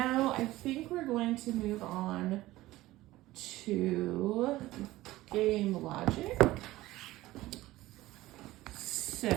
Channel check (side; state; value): left; quieter; 17.3 dB